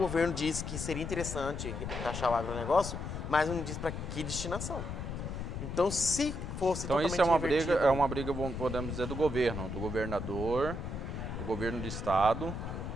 diz que seria interessante taxar o agronegócio, mas não diz para que destinação. Então, se fosse Então totalmente isso invertido, é uma briga, podemos dizer, do governo, do governador, do governo do estado.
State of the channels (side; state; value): left; noise; rumble, 5 dB below the sound